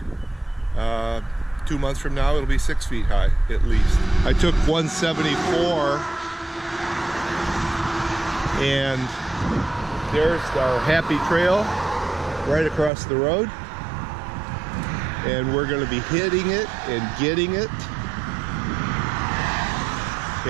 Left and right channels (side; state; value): left; drops out; at 12.9 s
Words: 2 months from now, it'll be 6 feet high, at least. I took 174, and there's our happy trail right across the road. And we're going to be hitting it and getting it